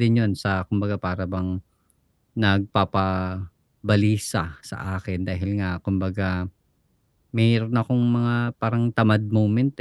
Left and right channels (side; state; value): both; identical; correlation 1.00